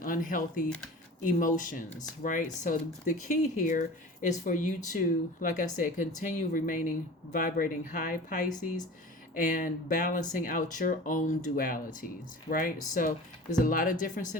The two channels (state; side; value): normal; both; correlation 0.38